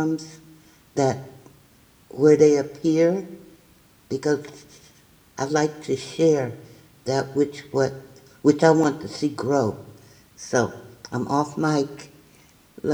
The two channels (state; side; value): identical; both; correlation 1.00